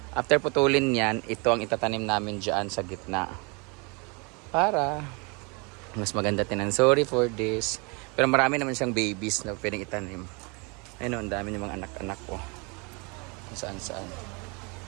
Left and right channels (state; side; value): quieter; left; 30.7 dB